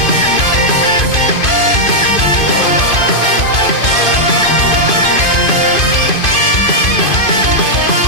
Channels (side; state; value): right; late; 2.5 ms